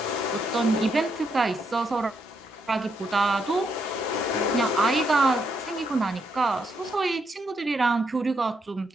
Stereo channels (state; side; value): normal; both; correlation 0.78